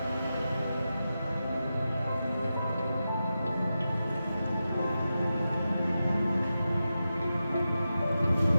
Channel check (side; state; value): both; inverted; correlation -0.91